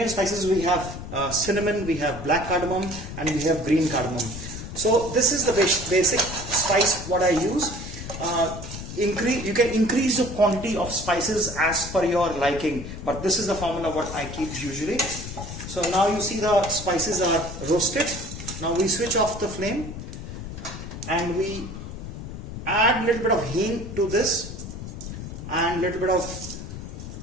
spices we have cinnamon, we have black cardamom, and we have green cardamom. So this is the basic spice what I use. You can increase the quantity of spices as per your liking, but this is the formula what I keep usually. So now you see the spices are roasted. Now we switch off the flame and we add a little bit of hing to this and a little bit of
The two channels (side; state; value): left; noise; rumble, 9 dB below the sound